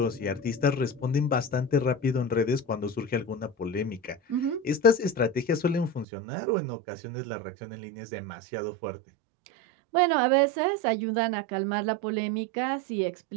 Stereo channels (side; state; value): left; drops out; at 6.1 s